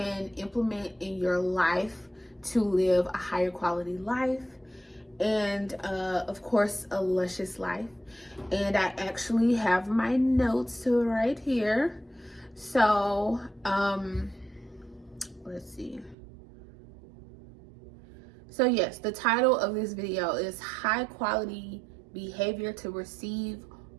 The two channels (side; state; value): left; drops out; at 16.2 s